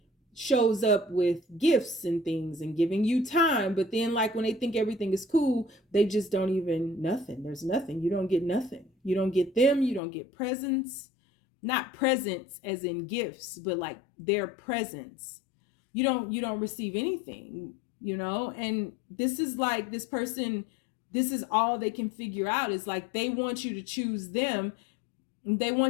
shows up with gifts and things and giving you time, but then, like, when they think everything is cool, they just don't even nothing. There's nothing. You don't get nothing. You don't get them. You don't get presents. Not presents as in gifts, but like their presence. You don't receive anything, and this is like, this person, this is all they can figure out, is like, they want you to choose them, and they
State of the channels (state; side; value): drops out; right; at 10.0 s